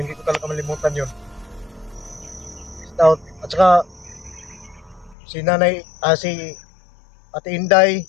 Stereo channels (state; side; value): drops out; right; at 5.2 s